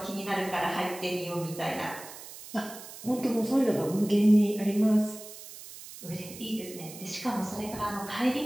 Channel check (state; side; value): noise; right; hiss, 14 dB below the sound